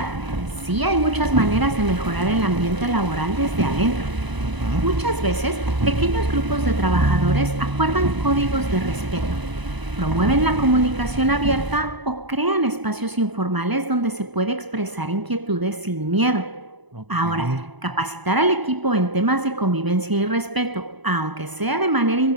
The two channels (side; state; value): left; late; 1.0 ms